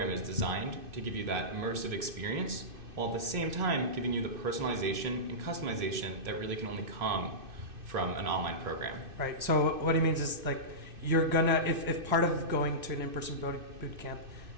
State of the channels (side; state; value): left; late; 2.6 ms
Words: is designed to give you that immersive experience while at the same time giving you the personalization and customization that really can only come from an online program. Right. So what he means is like you're gonna, if part of going to an in-person boot camp